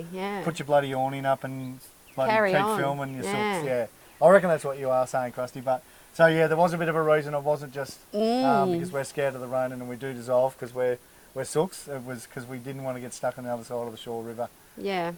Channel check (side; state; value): both; identical; correlation 1.00